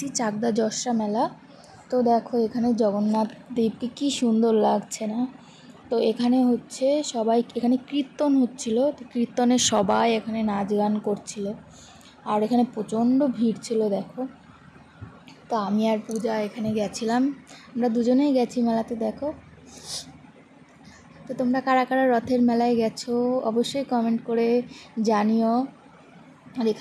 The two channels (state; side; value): identical; both; correlation 1.00